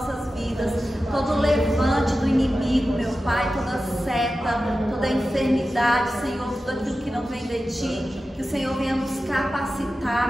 vidas, todo o levante do inimigo, meu Pai, toda seta, toda enfermidade, Senhor, tudo aquilo que não vem de Ti, que o Senhor venha nos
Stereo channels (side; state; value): both; normal; correlation 0.93